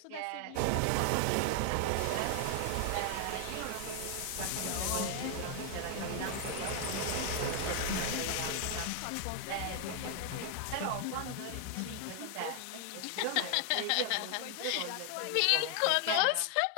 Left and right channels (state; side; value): different; both; correlation 0.00